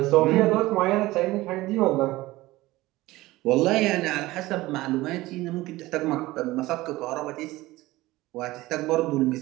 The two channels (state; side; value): quieter; left; 18.6 dB